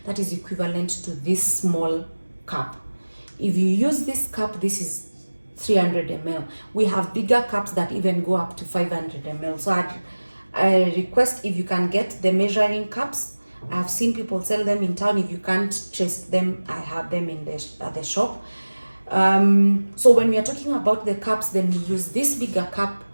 that is equivalent to this small cup. If you use this cup, this is 300 ml. We have bigger cups that even go up to 500 ml. So I request if you can get the measuring cups. I've seen people sell them in town. If you can't trace them, I have them in the shop. So when we are talking about the cups, then we use this bigger cup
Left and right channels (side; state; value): both; inverted; correlation -1.00